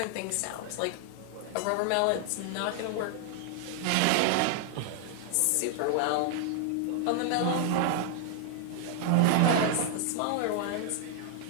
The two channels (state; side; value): different; both; correlation 0.00